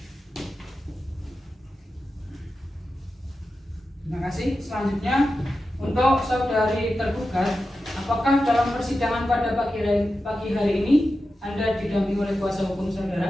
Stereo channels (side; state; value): both; normal; correlation 0.92